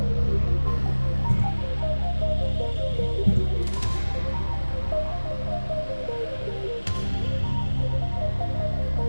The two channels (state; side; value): inverted; both; correlation -1.00